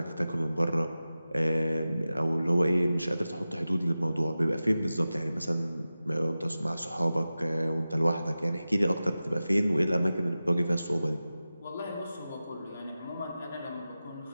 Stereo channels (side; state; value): both; inverted; correlation -0.95